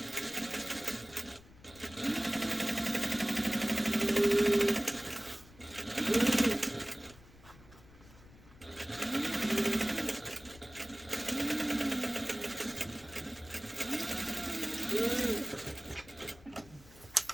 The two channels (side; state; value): left; noise; rumble, 22 dB below the sound